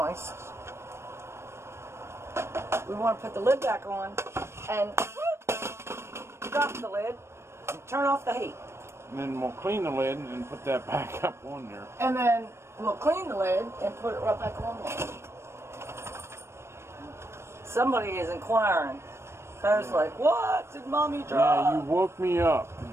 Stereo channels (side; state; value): left; late; 0.13 ms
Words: we want to put the lid back on and drop the lid and turn off the heat. And then we'll clean the lid and put that back up on there. And then we'll clean the lid and put it right back on there. Somebody is inquiring. I was like, what did Mommy drop? Yeah, you woke me up.